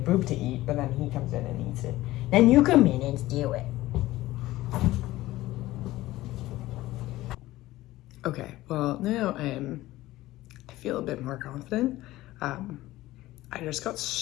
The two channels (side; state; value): right; quieter; 16.9 dB